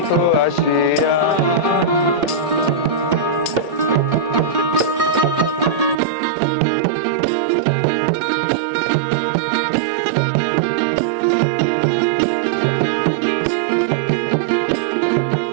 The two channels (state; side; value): drops out; left; at 6.0 s